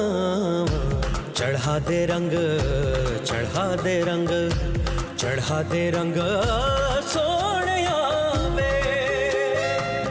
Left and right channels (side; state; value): both; identical; correlation 1.00